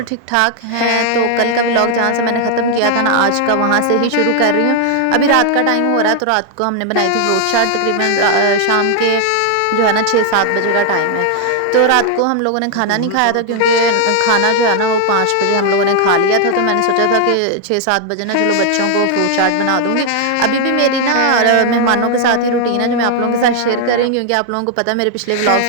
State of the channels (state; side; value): different; both; correlation 0.00